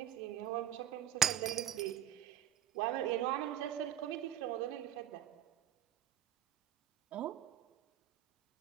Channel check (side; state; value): left; quieter; 10.8 dB